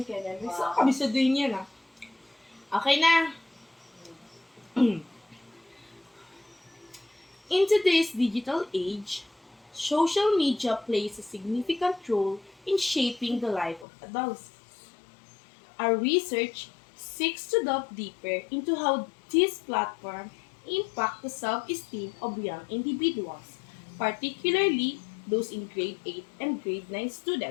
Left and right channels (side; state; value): right; drops out; at 13.9 s